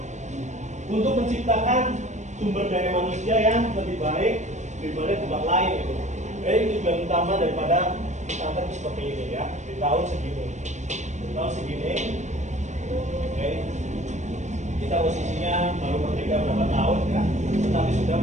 untuk menciptakan sumber daya manusia yang lebih baik daripada tempat lain gitu. Jadi tujuan utama daripada pesantren seperti ini ya, di tahun segini. Di tahun segini, oke. Kita posisinya baru merdeka berapa tahun ya, tetapi sudah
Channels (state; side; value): late; left; 0.34 ms